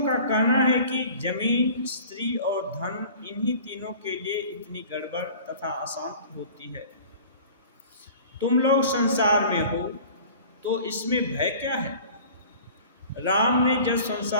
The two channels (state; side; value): inverted; both; correlation -0.44